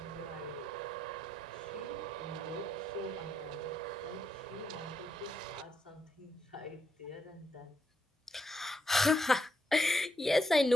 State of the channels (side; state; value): both; normal; correlation 0.79